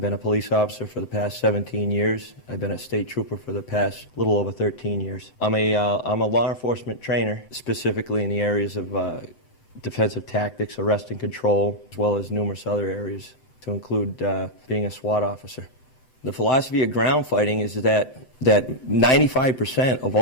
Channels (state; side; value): late; right; 7.7 ms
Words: been a police officer for the past 17 years. I've been a state trooper for the past little over 13 years. I'm a law enforcement trainer, specifically in the areas of defensive tactics, arrest and control, as well as numerous other areas, to include being a SWAT officer. The philosophy of ground fighting is that 95% of